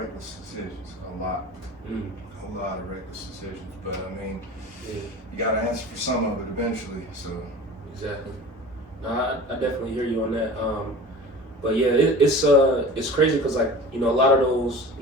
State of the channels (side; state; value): both; normal; correlation 0.37